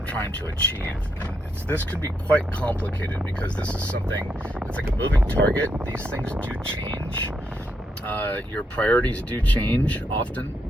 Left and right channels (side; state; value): both; normal; correlation 0.79